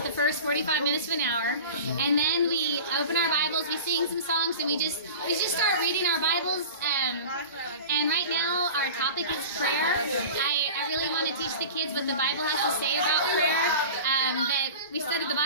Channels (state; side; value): inverted; both; correlation -0.35